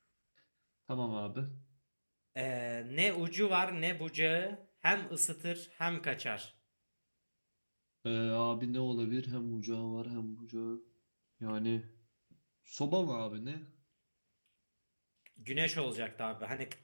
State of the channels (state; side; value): inverted; both; correlation -1.00